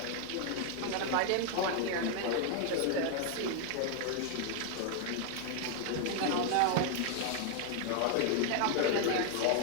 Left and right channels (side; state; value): both; different; correlation 0.00